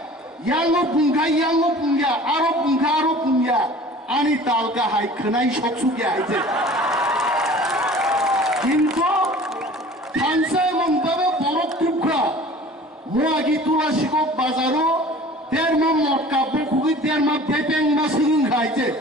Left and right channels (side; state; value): both; normal; correlation 0.44